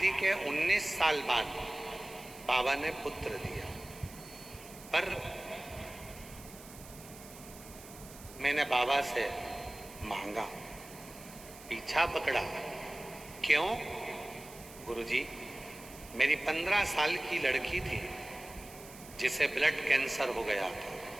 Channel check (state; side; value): noise; right; hiss, 17 dB below the sound